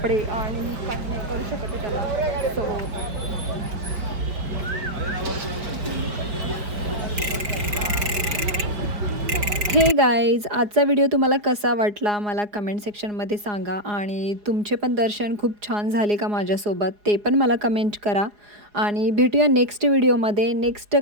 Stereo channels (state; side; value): late; left; 5.0 ms